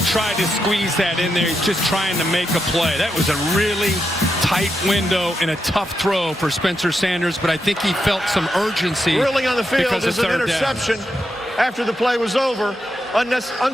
tried to squeeze that in there. He's just trying to make a play. That was a really tight window and a tough throw for Spencer Sanders, but I think he felt some urgency. Ruling on the field because is an interception after the play was over.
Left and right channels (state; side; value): normal; both; correlation 0.84